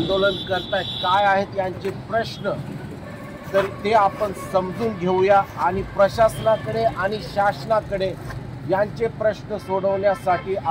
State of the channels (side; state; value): both; identical; correlation 1.00